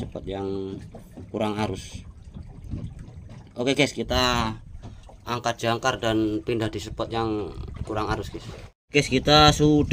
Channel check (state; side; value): identical; both; correlation 1.00